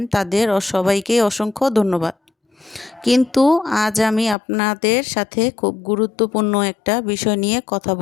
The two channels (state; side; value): drops out; right; at 4.4 s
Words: তাদের সবাইকে অসংখ্য ধন্যবাদ। কিন্তু আজ আমি আপনাদের সাথে খুব গুরুত্বপূর্ণ একটা বিষয় নিয়ে কথা